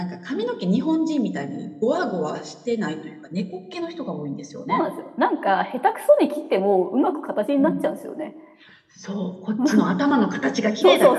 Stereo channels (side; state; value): both; identical; correlation 1.00